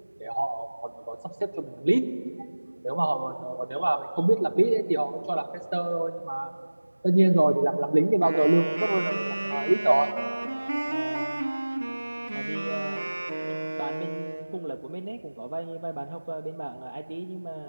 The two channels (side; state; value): both; inverted; correlation -1.00